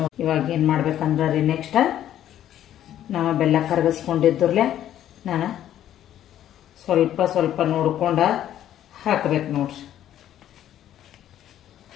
ಇವಾಗ ಏನು ಮಾಡ್ಬೇಕಂದ್ರೆ ರೀ, ನೆಕ್ಸ್ಟ್ ನಾವು ಬೆಲ್ಲ ಕರಗಿಸ್ಕೊಂಡಿದ್ರಲ್ಲೇ ನಾನು ಸ್ವಲ್ಪ ಸ್ವಲ್ಪ ನೋಡ್ಕೊಂಡು ಹಾಕ್ಬೇಕು ನೋಡ್ರಿ.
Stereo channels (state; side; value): quieter; right; 11.5 dB